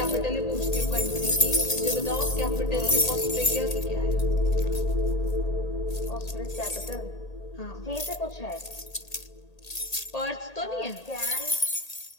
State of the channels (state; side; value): late; right; 1.8 ms